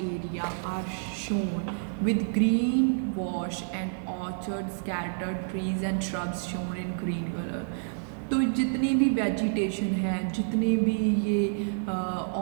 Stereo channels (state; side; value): silent; left; 59 dB below the other